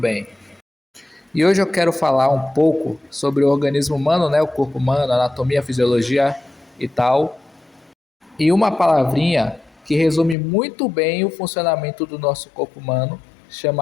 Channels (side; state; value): right; drops out; at 10.4 s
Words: E hoje eu quero falar um pouco sobre o organismo humano, né? O corpo humano, anatomia, fisiologia e tal. E uma palavrinha que resume muito bem o funcionamento do nosso corpo humano,